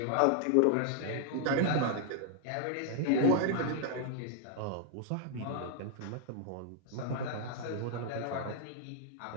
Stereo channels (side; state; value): both; different; correlation 0.00